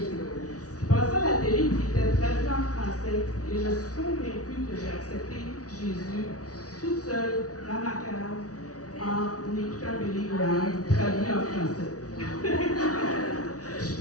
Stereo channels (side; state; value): right; late; 0.67 ms